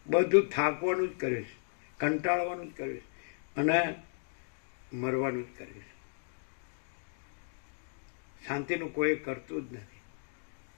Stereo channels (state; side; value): silent; right; digital silence